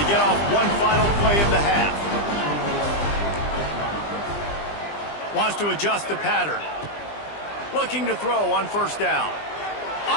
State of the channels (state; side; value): late; right; 20 ms